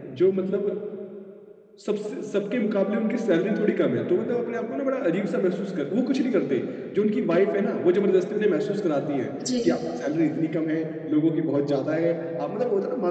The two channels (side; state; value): both; identical; correlation 1.00